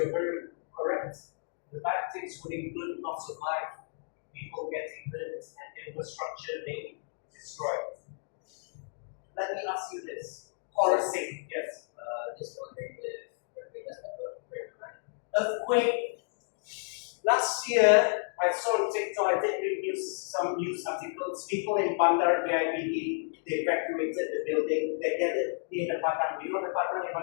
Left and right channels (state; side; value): silent; right; digital silence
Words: very correct. The bad things would include loss of life, people getting hurt, and infrastructure being destroyed. Let me ask you this. Chorusing, yes. Just wondering if Earthquake. Last year, I saw on TikTok, I did read some news articles. People in Bandar BIBD, they evacuated the building. They get it near the Padang. You know the Padang in